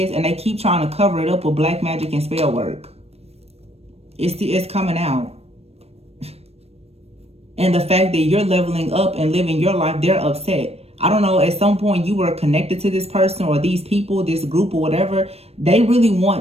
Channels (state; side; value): late; left; 0.29 ms